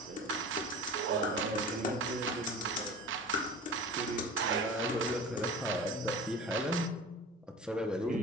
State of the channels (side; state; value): both; normal; correlation 0.37